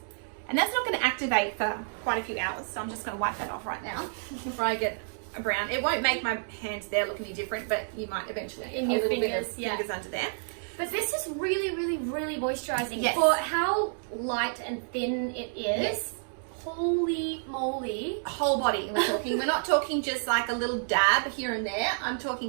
And that's not going to activate for quite a few hours. So I'm just going to wipe that off right now before I get a brown. It won't make my hands there look any different, but you might eventually get a little bit of fingers under there. But this is really, really, really moisturising. Yes. For how light and thin it is. Yes. Holy moly. Whole body we're talking. We're not talking just like a little dab here and there. I'm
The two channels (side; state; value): left; silent; digital silence